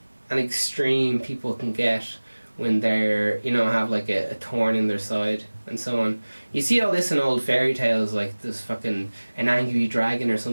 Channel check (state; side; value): inverted; both; correlation -1.00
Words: and extreme people can get when they're, have like a thorn in their side and so on. You see all this in old fairy tales, like this fucking an angry dragon or